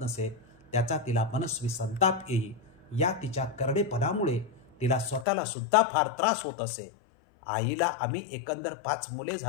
नसे. त्याचा तिला मनस्वी संताप येई. या तिच्या करडेपणामुळे तिला स्वतःला सुद्धा फार त्रास होत असे. आईला आम्ही एकंदर 5 मुले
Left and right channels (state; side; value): drops out; right; at 5.2 s